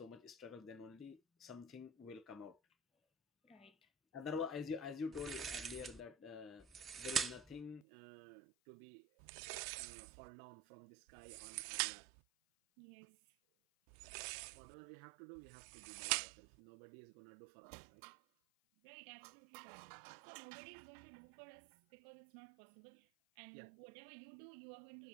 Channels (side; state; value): left; drops out; at 7.8 s